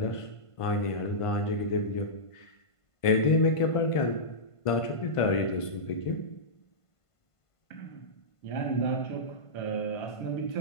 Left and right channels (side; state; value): right; late; 1.5 ms